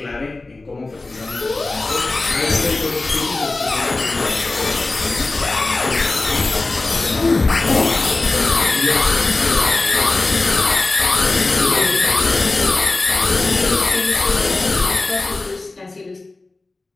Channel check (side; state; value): right; quieter; 3.3 dB